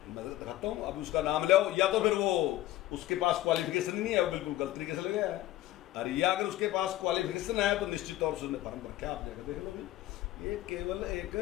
मैं दिखाता हूँ अभी उसका नाम ले आओ। या तो फिर वो उसके पास क्वालिफिकेशन ही नहीं है, वो बिल्कुल गलत तरीके से लगा है। और या अगर उसके पास क्वालिफिकेशन है तो निश्चित तौर से उसने फॉर्म रखा, आप जाकर देख लो। ये केवल एक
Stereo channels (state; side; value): quieter; right; 15.4 dB